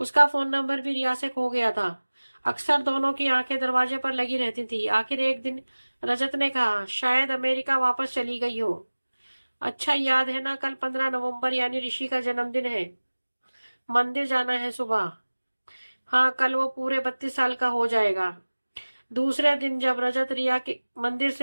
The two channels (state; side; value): inverted; both; correlation -1.00